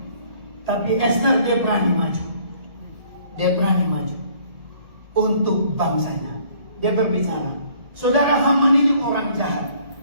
Tapi Ester dia berani maju. Dia berani maju untuk bangsanya. Dia berbicara. Saudara, Haman ini orang jahat.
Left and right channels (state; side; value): late; left; 1.7 ms